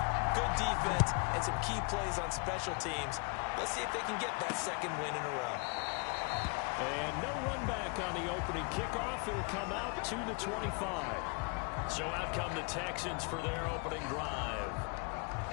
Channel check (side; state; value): right; quieter; 32.4 dB